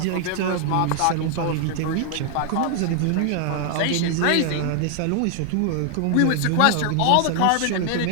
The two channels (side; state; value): both; different; correlation 0.00